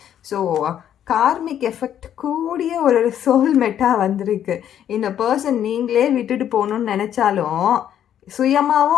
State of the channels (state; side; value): quieter; right; 10.2 dB